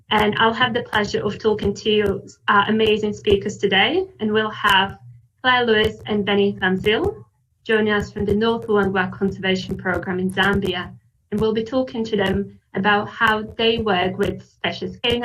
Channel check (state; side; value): identical; both; correlation 1.00